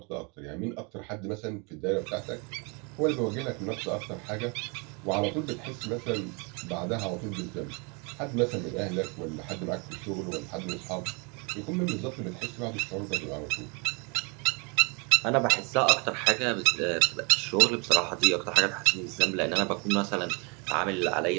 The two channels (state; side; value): quieter; left; 32.1 dB